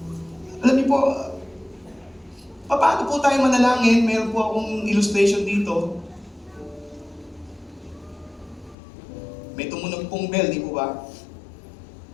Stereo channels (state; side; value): drops out; right; at 8.8 s